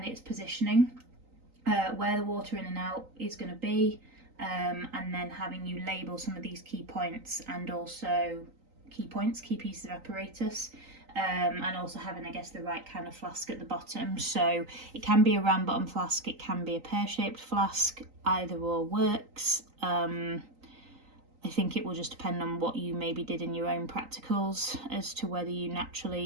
its positioning, where the water in and out is going to be, and then having you label some of these key points and also key pieces of apparatus, and also having, I guess, the right kind of flask at the bottom. So it can be a round bottom flask, it can be a pear-shaped flask, either or works. I think it will just depend on what you maybe did in your own practicals as to whether you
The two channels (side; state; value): left; late; 3.9 ms